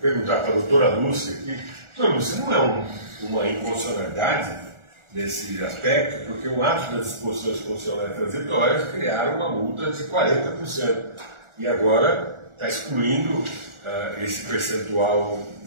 perguntar para a doutora Lúcia aqui. Doutora Lúcia, não é uma inconstitucionalidade nesse aspecto, porque o ato das disposições constitucionais transitórias criaram uma multa de 40%. E agora está excluindo esse percentual,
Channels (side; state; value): left; late; 1.4 ms